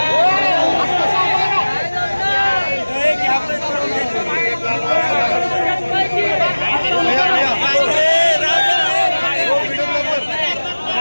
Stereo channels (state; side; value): inverted; both; correlation -1.00